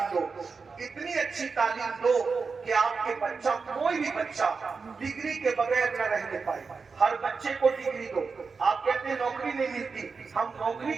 دو، اتنی اچھی تعلیم دو کہ آپ کے بچہ، کوئی بھی بچہ ڈگری کے بغیر نہ رہنے پائے۔ ہر بچے کو ڈگری دو۔ آپ کہتے ہیں نوکری نہیں ملتی، ہم نوکری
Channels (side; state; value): left; quieter; 4.9 dB